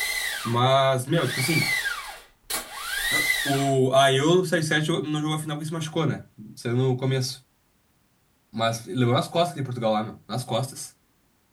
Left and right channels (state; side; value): identical; both; correlation 1.00